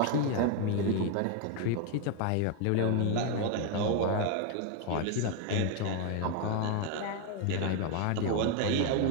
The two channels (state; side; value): different; both; correlation 0.01